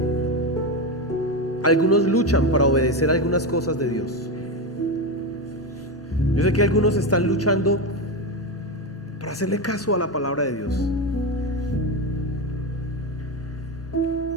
algunos luchan para obedecer algunas cosas de Dios. Yo sé que algunos están luchando para hacerle caso a la palabra de Dios.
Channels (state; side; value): normal; both; correlation 0.15